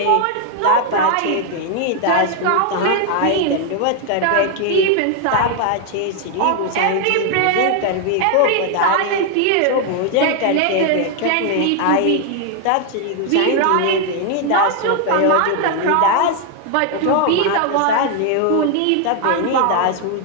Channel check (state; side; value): different; both; correlation 0.00